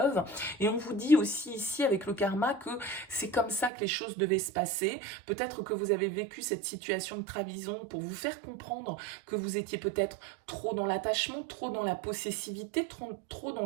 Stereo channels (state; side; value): drops out; left; at 3.7 s